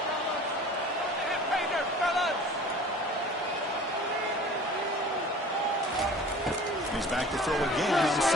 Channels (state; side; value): normal; both; correlation 0.44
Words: He's back to throw again on